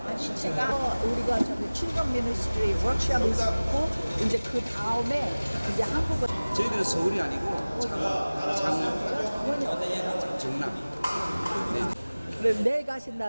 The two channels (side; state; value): both; inverted; correlation -1.00